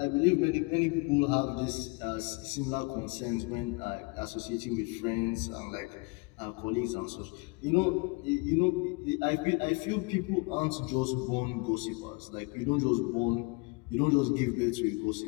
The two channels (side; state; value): right; quieter; 29.0 dB